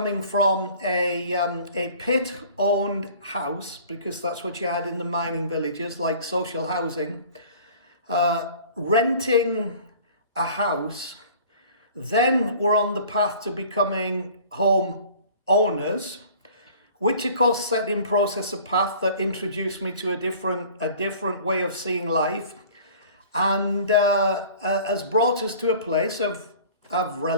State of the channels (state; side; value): inverted; both; correlation -0.47